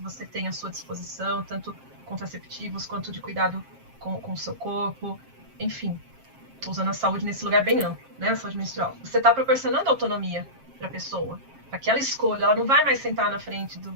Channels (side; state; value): left; late; 7.5 ms